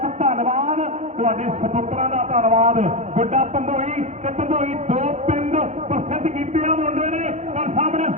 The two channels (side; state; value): left; late; 0.33 ms